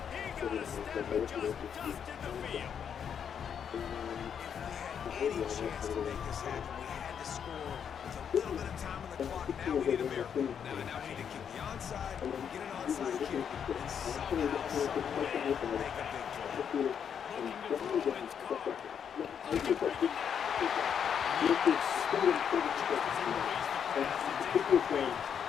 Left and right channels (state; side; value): quieter; right; 7.8 dB